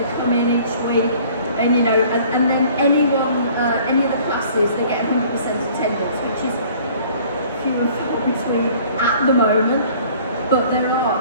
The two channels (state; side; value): inverted; both; correlation -0.53